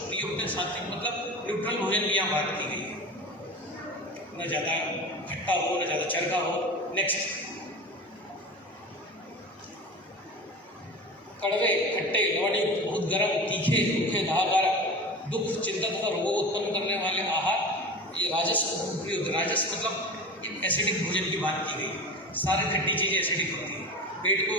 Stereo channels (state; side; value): normal; both; correlation 0.31